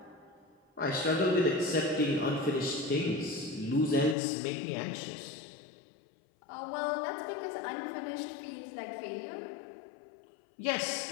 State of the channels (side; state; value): right; drops out; at 4.2 s